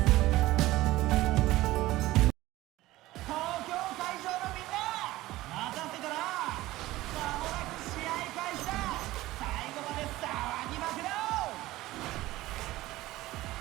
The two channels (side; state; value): left; quieter; 17.4 dB